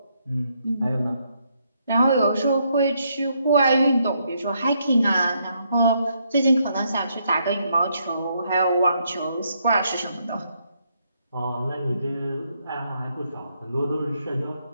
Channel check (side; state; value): both; inverted; correlation -0.75